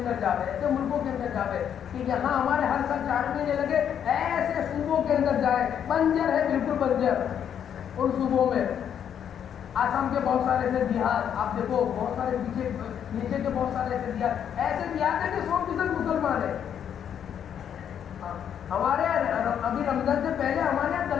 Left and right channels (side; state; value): right; quieter; 8.8 dB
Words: جا رہے, ایسے ملکوں کے اندر جا رہے کہ یہاں ہمارے ہر سال 4 مہینے لگے, ایسے صوبوں کے اندر جائیں. بنجر ہے, بالکل بنجر ان صوبوں میں. آسام کے بہت سارے ایسے دیہات آپ دیکھو, بہت سارے نیچے کے بہت سارے ایسے دیہات ہیں کہ 100% مسلمان ہیں. ہمارے ابھی رمضان سے پہلے ہمارے یہاں